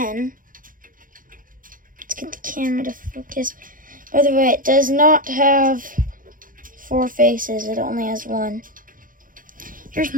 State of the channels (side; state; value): left; late; 0.40 ms